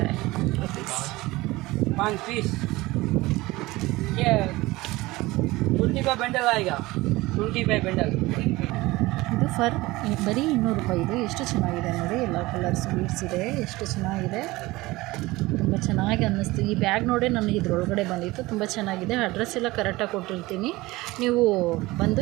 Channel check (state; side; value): quieter; left; 20.1 dB